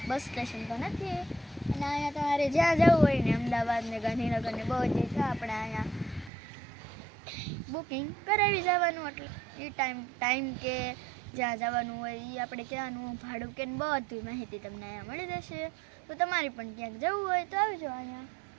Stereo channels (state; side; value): drops out; left; at 6.3 s